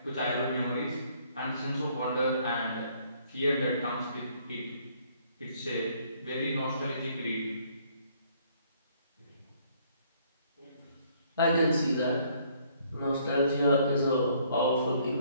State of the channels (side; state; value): both; inverted; correlation -0.64